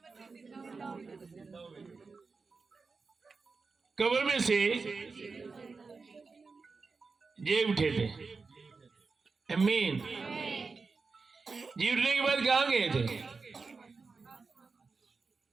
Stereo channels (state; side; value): quieter; left; 4.4 dB